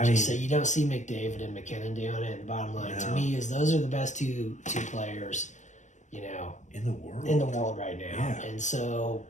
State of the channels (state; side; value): late; right; 0.35 ms